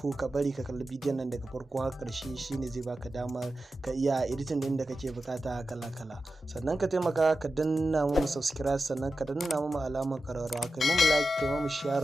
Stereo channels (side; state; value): both; normal; correlation 0.92